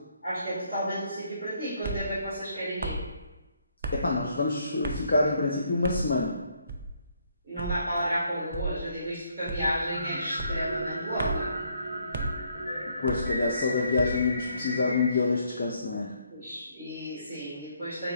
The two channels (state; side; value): inverted; both; correlation -0.71